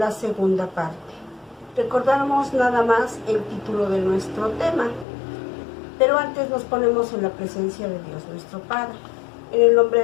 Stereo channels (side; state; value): right; drops out; at 5.1 s